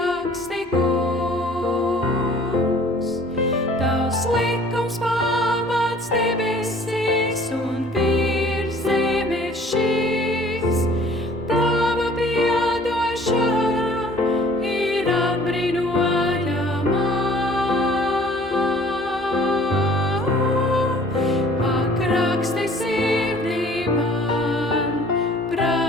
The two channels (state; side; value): normal; both; correlation 0.52